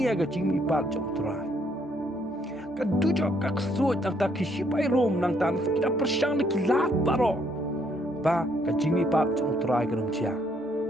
ga jing mi pat jong trai ka dujo ka so tang ta kishipai rom nang tan kita persyang kila baro ba ka jing mi pat jong trai ga rom chia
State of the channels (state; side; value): normal; both; correlation 0.69